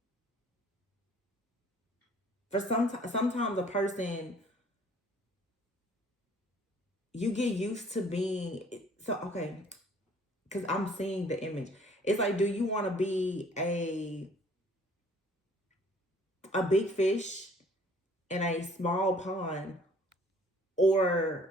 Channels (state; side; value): normal; both; correlation 0.56